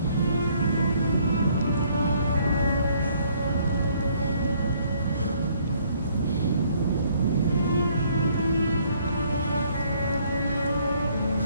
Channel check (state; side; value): inverted; both; correlation -0.64